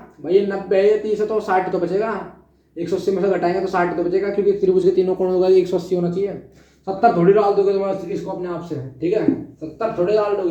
भाई, ये 90 है, ये 30 है तो 60 तो बचेगा, 180 में से घटाएंगे तो 60 तो बचेगा, क्योंकि त्रिभुज के तीनों कोणों का 180 होना चाहिए। 70 थोड़ी डाल दोगे तुम इसको अपने आप से, ठीक है, 70 थोड़ी डाल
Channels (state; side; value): identical; both; correlation 1.00